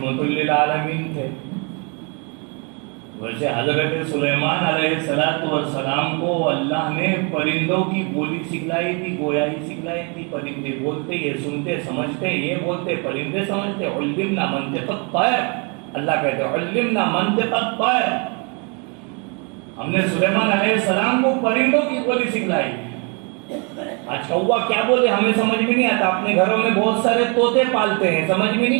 للعالمین تھے. ویسے حضرت سلیمان علیہ السلام کو اللہ نے پرندوں کی بولی سکھلائی تھی، گویائی سکھلائی تھی. پرندے بولتے، یہ سنتے سمجھتے، یہ بولتے پرندے سمجھتے. علمنا منطق الطیر، اللہ کہتے ہیں علمنا منطق الطیر، ہم نے سلیمان علیہ السلام کو پرندوں کی بولی سکھلائی. آج کوا کیا بولے ہمیں سمجھ میں نہیں آتا. اپنے گھروں میں بہت سارے طوطے پالتے ہیں، سمجھ میں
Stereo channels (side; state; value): left; quieter; 34.0 dB